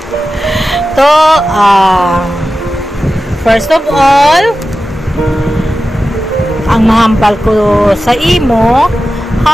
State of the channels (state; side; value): normal; both; correlation 0.93